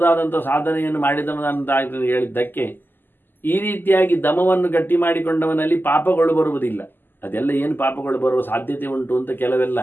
ಸಾಧನೆಯನ್ನು ಮಾಡಿದವನಂತ ಹೇಳಿದ್ದಕ್ಕೆ ಈ ರೀತಿಯಾಗಿ ದಮವನ್ನು ಗಟ್ಟಿ ಮಾಡಿಕೊಂಡವನಲ್ಲಿ ಪಾಪಗಳು ಬರುವುದಿಲ್ಲ. ಅದೆಲ್ಲ ಏನು ಪಾಪಗಳು ಬರುವ ಸಾಧ್ಯತೆ ಉಂಟು ಅಂತ ಕೆಲವೆಲ್ಲ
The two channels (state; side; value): late; right; 0.093 ms